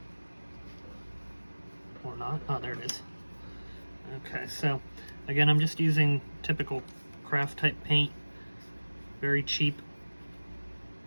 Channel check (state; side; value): inverted; both; correlation -1.00